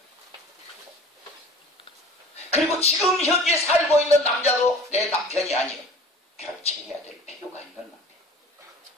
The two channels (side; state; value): both; normal; correlation 0.44